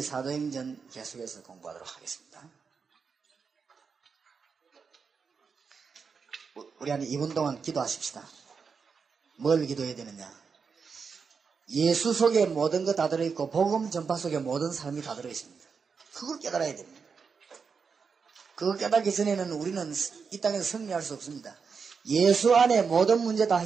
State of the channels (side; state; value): left; quieter; 5.6 dB